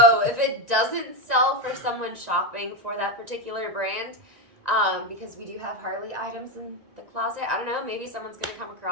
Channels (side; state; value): left; late; 1.9 ms